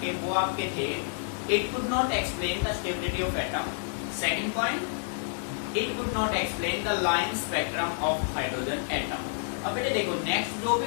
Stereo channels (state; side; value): silent; right; digital silence